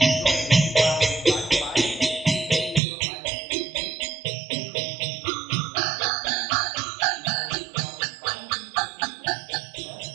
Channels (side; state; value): left; drops out; at 2.8 s